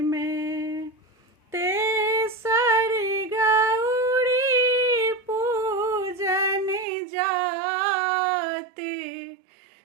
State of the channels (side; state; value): left; drops out; at 6.9 s